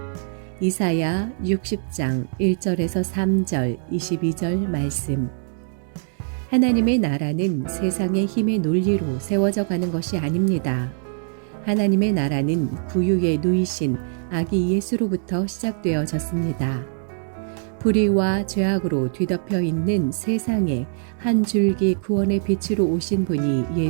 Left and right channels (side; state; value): left; silent; 64 dB below the other